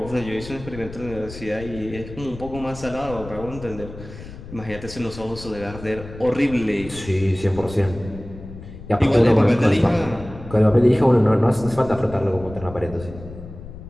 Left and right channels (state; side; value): noise; left; rumble, 14 dB below the sound